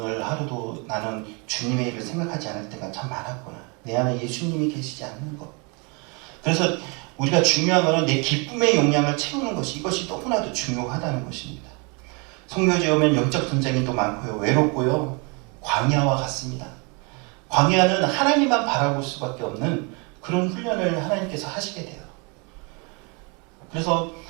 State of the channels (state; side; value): quieter; left; 31.8 dB